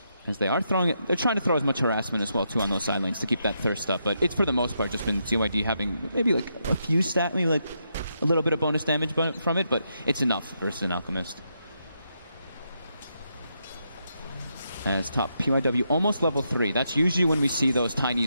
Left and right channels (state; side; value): inverted; both; correlation -0.81